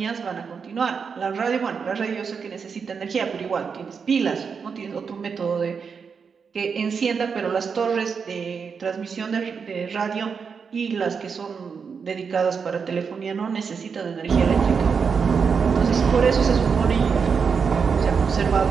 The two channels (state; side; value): quieter; left; 5.9 dB